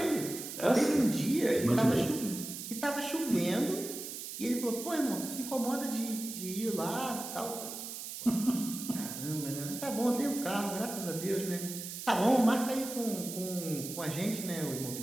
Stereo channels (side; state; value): right; noise; hiss, 8 dB below the sound